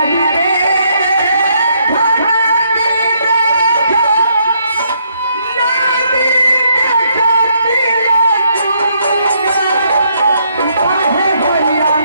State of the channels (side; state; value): both; inverted; correlation -0.72